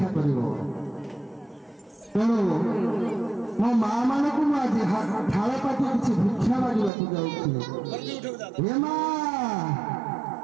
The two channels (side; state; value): left; drops out; at 6.9 s